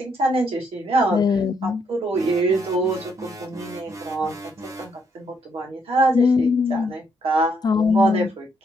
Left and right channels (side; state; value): both; normal; correlation 0.73